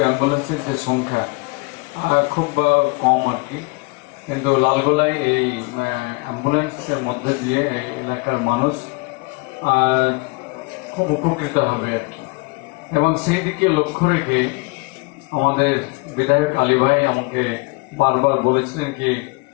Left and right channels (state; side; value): quieter; right; 28.1 dB